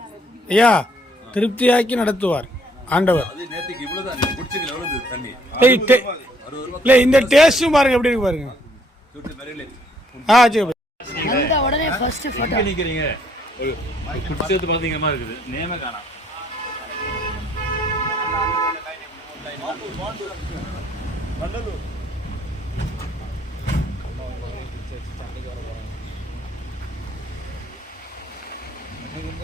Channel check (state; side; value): normal; both; correlation 0.65